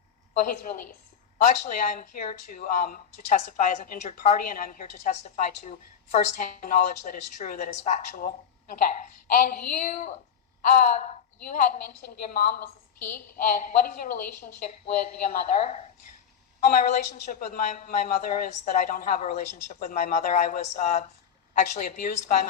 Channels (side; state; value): right; quieter; 7.8 dB